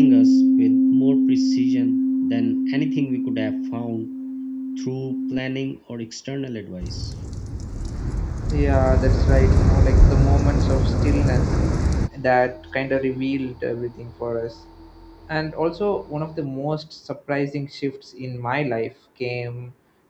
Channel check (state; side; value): identical; both; correlation 1.00